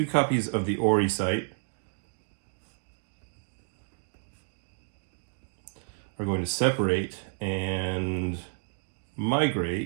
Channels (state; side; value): silent; left; 58 dB below the other